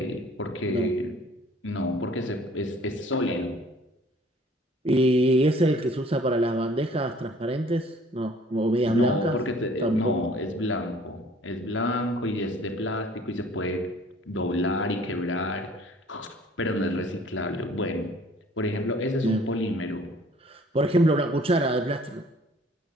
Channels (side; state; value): both; normal; correlation 0.54